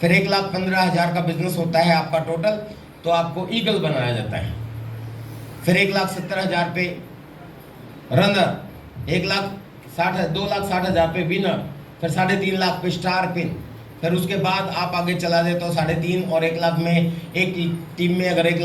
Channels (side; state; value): both; identical; correlation 1.00